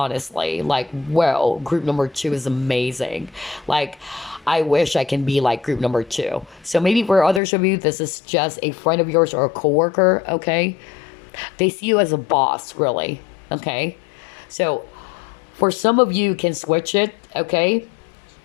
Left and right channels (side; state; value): right; drops out; at 7.4 s